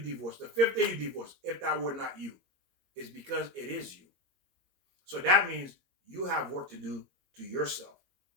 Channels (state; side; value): late; left; 22 ms